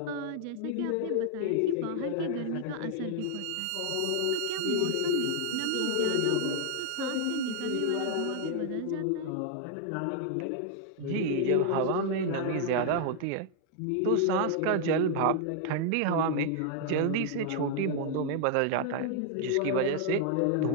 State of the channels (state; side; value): different; both; correlation 0.00